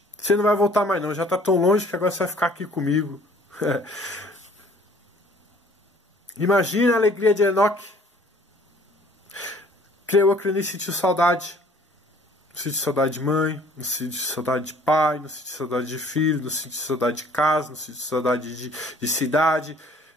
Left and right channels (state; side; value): normal; both; correlation 0.56